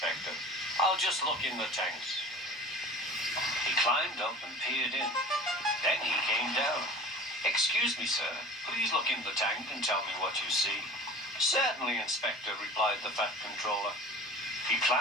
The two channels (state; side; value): normal; both; correlation 0.40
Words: I'll just look in the tanks. He climbed up and peered in. Then he came down. Excuse me, sir. Please look in the tank and tell me what you see. Certainly, Inspector, replied the Fat Controller. He